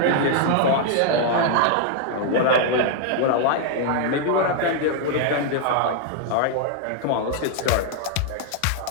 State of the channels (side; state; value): both; different; correlation 0.00